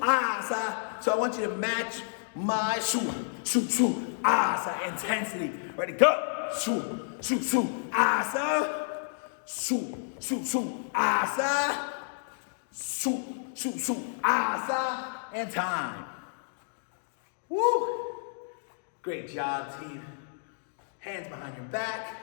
asa. So I want you to match my shoot, shoot, shoot, asa intensity. Ready, go. Shoot, shoot, shoot, asa. Shoot, shoot, shoot, asa. Shoot, shoot, shoot, asa. And time. Woo! Great job, team. Hands behind your back.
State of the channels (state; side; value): silent; right; digital silence